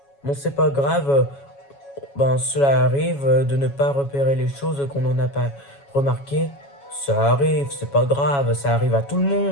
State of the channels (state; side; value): late; right; 7.2 ms